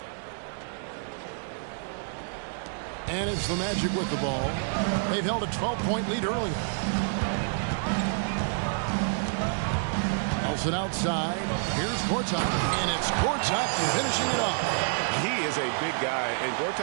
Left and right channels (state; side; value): silent; left; digital silence